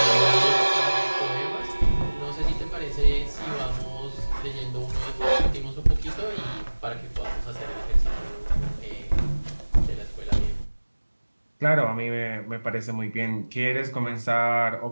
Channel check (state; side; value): inverted; both; correlation -1.00